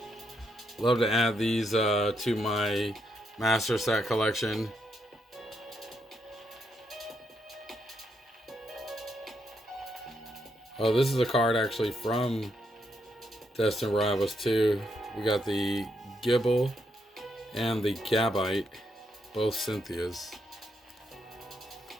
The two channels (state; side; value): normal; both; correlation 0.79